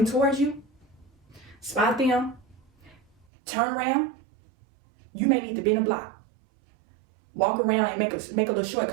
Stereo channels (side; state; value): left; drops out; at 3.2 s